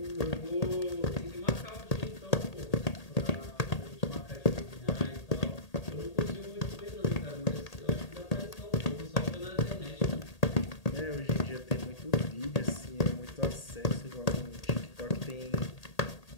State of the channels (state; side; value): late; right; 1.8 ms